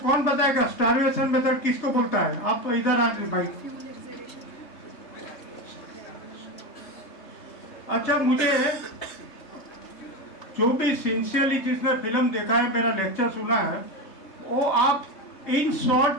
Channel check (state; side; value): late; right; 3.3 ms